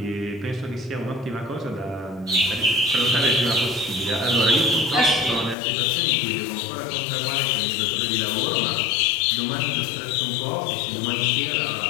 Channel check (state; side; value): drops out; right; at 5.6 s